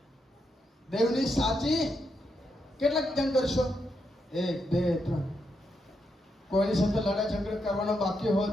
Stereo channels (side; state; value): both; normal; correlation 0.82